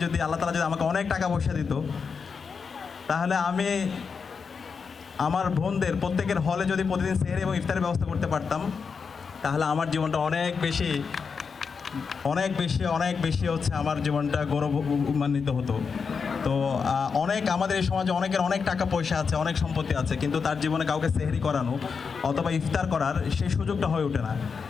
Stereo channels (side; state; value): right; quieter; 5.6 dB